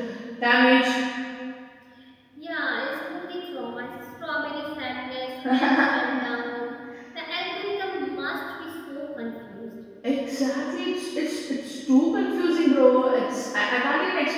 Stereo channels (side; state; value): both; identical; correlation 1.00